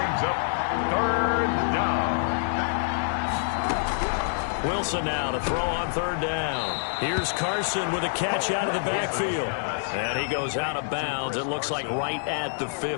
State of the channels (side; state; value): right; silent; 61 dB below the other